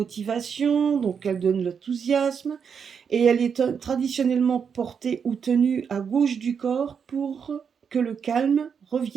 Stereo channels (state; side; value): quieter; left; 6.8 dB